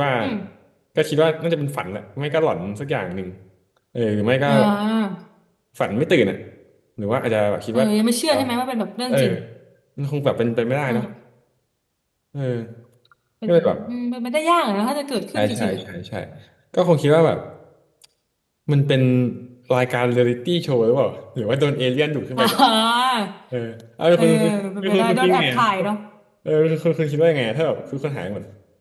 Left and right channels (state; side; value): identical; both; correlation 1.00